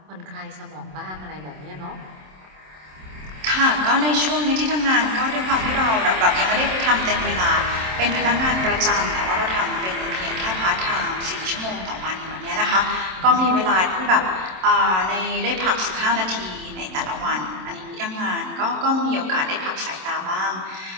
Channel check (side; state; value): left; late; 27 ms